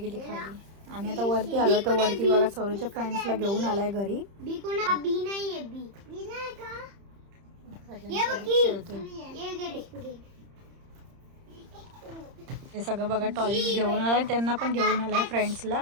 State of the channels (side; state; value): left; late; 30 ms